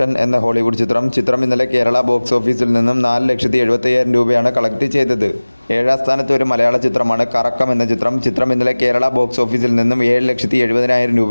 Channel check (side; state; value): both; inverted; correlation -1.00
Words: എന്ന ഹോളിവുഡ് ചിത്രം. ചിത്രം ഇന്നലെ കേരള ബോക്സ് ഓഫീസിൽ നിന്നും 4,70,000 രൂപയാണ് കളക്ട് ചെയ്തത്. 7ാം സ്ഥാനത്ത് ഒരു മലയാള ചിത്രമാണ് കറക്കം എന്ന ചിത്രം. ചിത്രം ഇന്നലെ കേരള ബോക്സ് ഓഫീസിൽ നിന്നും 7,70,000